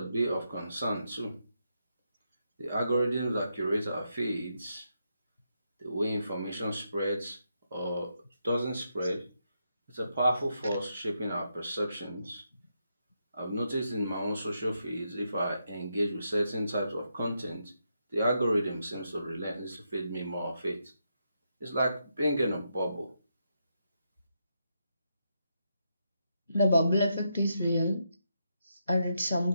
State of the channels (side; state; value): both; inverted; correlation -0.82